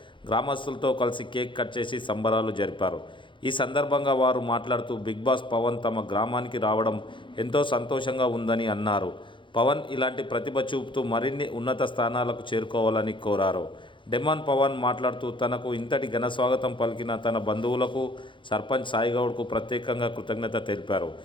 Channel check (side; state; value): right; late; 0.24 ms